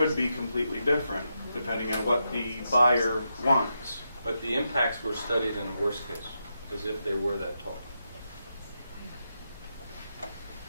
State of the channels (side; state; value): both; inverted; correlation -0.85